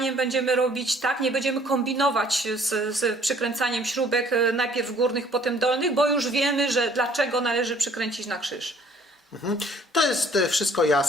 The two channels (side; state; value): both; normal; correlation 0.58